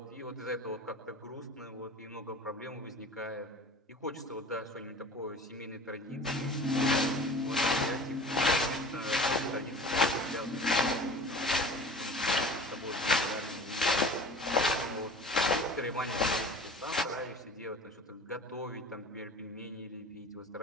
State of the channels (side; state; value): both; normal; correlation 0.40